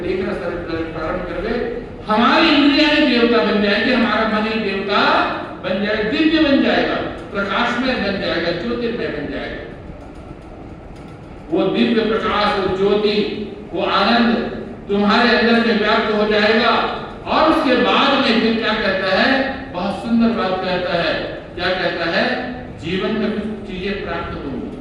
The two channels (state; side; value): identical; both; correlation 1.00